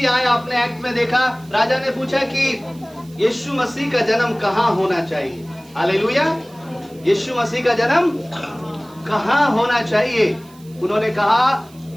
आए, आपने एक्ट में देखा, राजा ने पूछा कि यीशु मसीह का जन्म कहाँ होना चाहिए, हालेलुया। यीशु मसीह का जन्म कहाँ होना चाहिए? उन्होंने कहा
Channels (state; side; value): noise; right; hiss, 26 dB below the sound